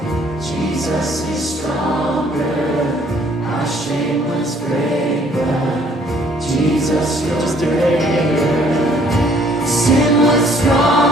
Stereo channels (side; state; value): both; normal; correlation 0.61